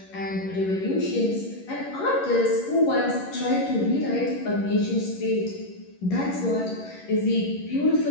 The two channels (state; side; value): late; right; 11 ms